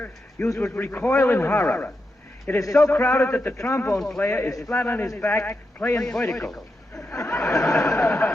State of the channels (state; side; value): normal; both; correlation 0.87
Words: you would recoil in horror. It is so crowded that the trombone player is flat on his back, playing vertical.